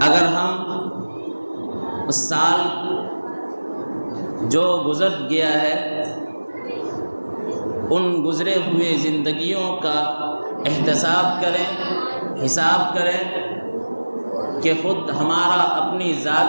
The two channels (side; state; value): both; inverted; correlation -1.00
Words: اگر ہم اس سال جو گزر گیا ہے ان گزرے ہوئے زندگیوں کا احتساب کریں، حساب کریں کہ خود ہمارا اپنی